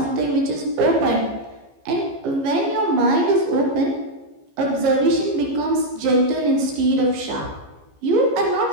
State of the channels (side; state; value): left; late; 15 ms